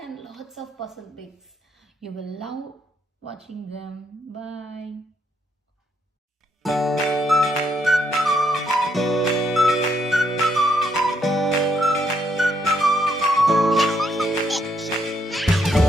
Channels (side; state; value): both; normal; correlation 0.75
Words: lots of puzzle bits. You will love watching them. Bye.